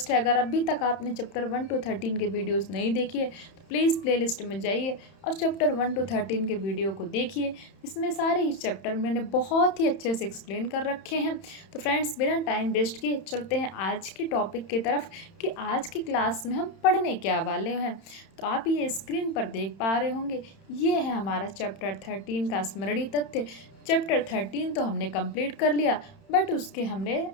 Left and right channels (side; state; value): right; late; 31 ms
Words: है, अगर अभी तक आपने चैप्टर 1 to 13 के वीडियोज़ नहीं देखी तो प्लीज़ प्लेलिस्ट में जाइए और चैप्टर 1 to 13 के वीडियो को देखिए। इसमें सारे ही चैप्टर मैंने बहुत ही अच्छे से एक्सप्लेन कर रखे हैं। तो फ्रेंड्स, बिना टाइम वेस्ट किए चलते हैं आज की टॉपिक की तरफ कि आज की क्लास में हम पढ़ने क्या वाले हैं। तो आप ये स्क्रीन पर देख पा रहे होंगे, ये है हमारा चैप्टर 13 का स्मरणीय तथ्य। चैप्टर 13 तो हमने कंप्लीट कर लिया, बट उसके हमने